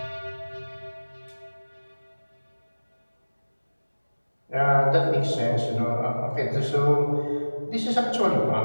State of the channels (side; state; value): both; inverted; correlation -1.00